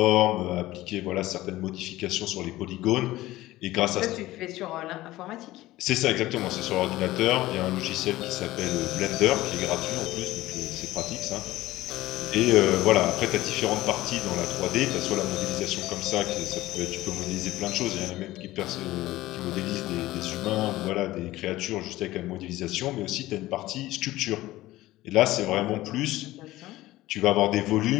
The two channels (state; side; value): quieter; right; 16.9 dB